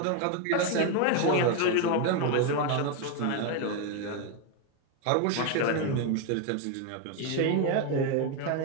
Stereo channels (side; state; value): both; different; correlation 0.02